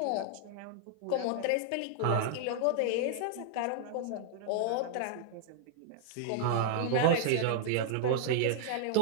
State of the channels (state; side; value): different; both; correlation -0.01